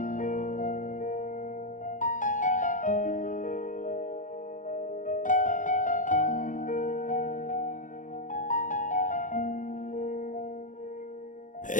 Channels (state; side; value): late; right; 0.37 ms